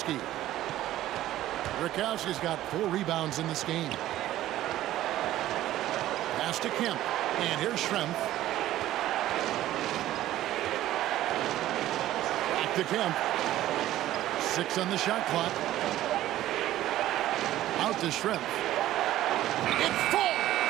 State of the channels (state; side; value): quieter; left; 14.1 dB